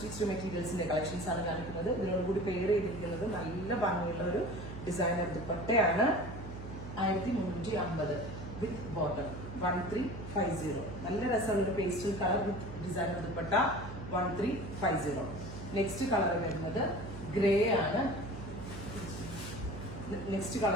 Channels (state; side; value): noise; right; hum, 11 dB below the sound